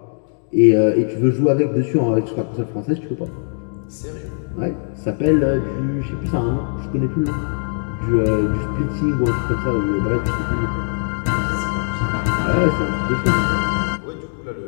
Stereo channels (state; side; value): silent; right; digital silence